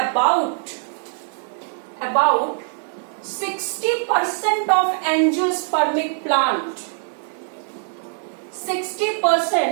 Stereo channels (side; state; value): left; silent; 64 dB below the other